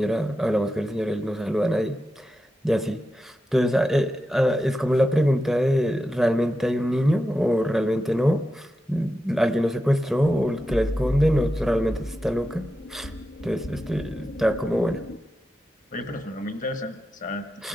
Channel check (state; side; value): normal; both; correlation 0.90